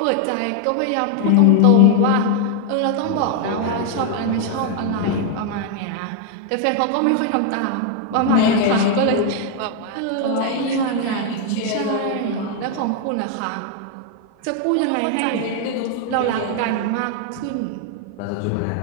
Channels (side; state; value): both; different; correlation 0.00